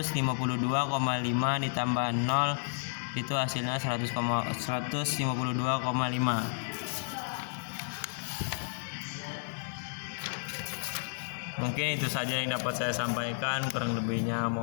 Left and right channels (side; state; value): right; silent; digital silence